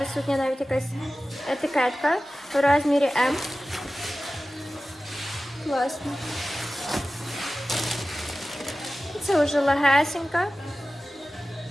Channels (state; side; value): normal; both; correlation 0.96